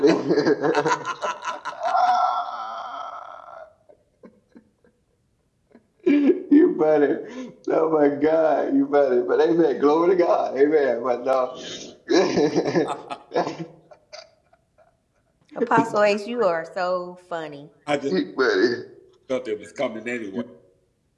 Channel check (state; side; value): identical; both; correlation 1.00